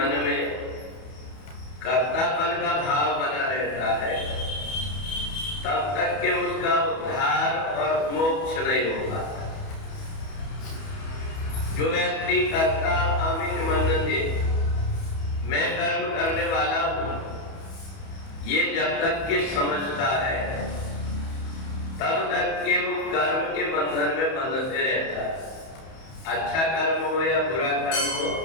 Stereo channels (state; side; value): late; right; 31 ms